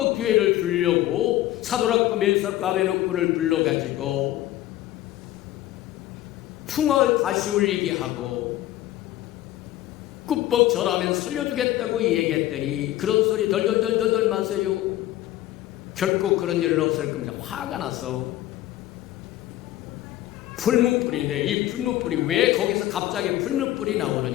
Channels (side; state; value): right; quieter; 14.6 dB